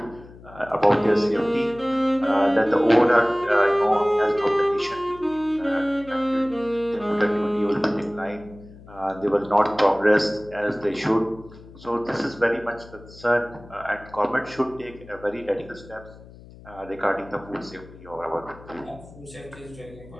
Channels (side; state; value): left; noise; hum, 20 dB below the sound